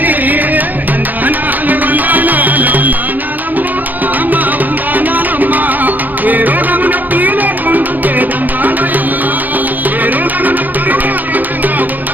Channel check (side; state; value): left; late; 0.087 ms